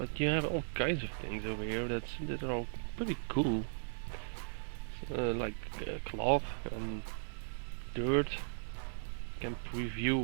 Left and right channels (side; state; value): left; silent; digital silence